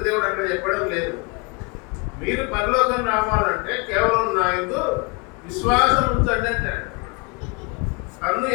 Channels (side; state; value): right; quieter; 29.4 dB